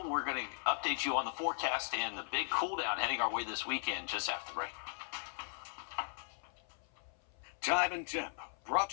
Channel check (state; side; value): silent; right; 52 dB below the other